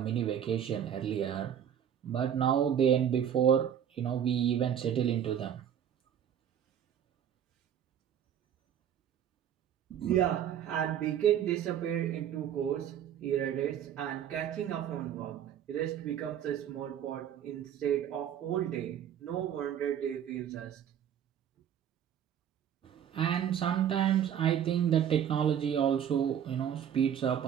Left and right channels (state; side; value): quieter; left; 9.4 dB